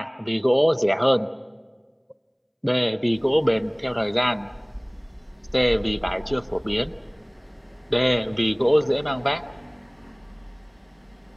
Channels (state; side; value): identical; both; correlation 1.00